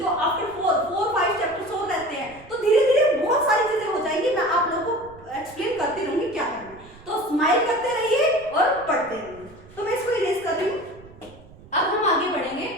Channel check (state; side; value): noise; right; rumble, 22 dB below the sound